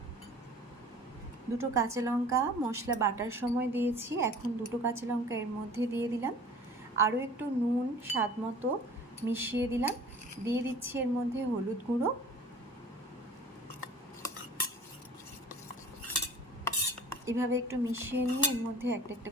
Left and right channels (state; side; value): normal; both; correlation 0.45